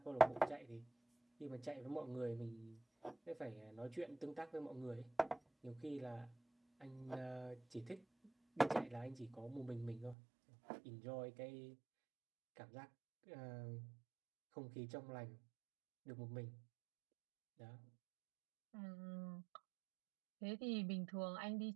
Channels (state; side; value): drops out; left; at 10.2 s